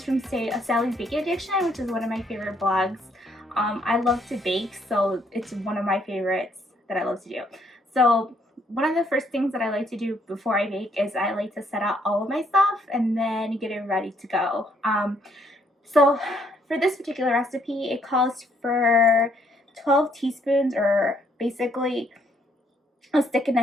from Sally's Baking Addiction, which is one of my favorite blogs. I love to bake, so it's one of my favorites that I love to do. So one of the first things that I like to do before I bake is I like to set out all of my stuff and then get it ready to go. So for this particular recipe, it calls for 12 teaspoons, or basically a stick and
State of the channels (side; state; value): both; normal; correlation 0.69